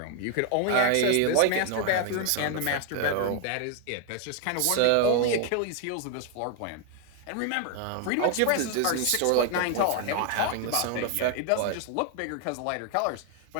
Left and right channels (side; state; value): both; different; correlation 0.01